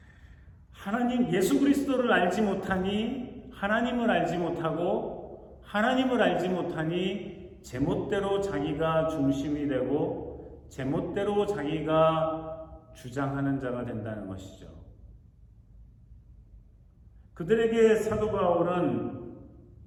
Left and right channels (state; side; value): identical; both; correlation 1.00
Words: 하나님, 예수 그리스도를 알지 못하니 하나님을 알지 못하고, 하나님을 알지 못하니 제멋대로 자기가 중심이 되고 제멋대로 자기가 주장하는 자가 된다는 것이죠. 그들에게 사도 바울은